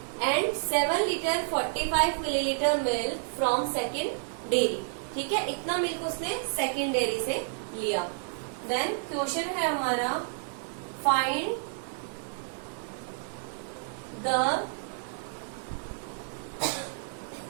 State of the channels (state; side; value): silent; left; 58 dB below the other